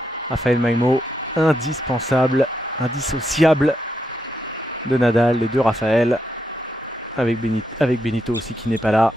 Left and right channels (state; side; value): normal; both; correlation 0.81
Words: Rafael Maimo, indispensable, indissociable de Nadal et de Rafael, avec Benito aussi qui n'est pas là.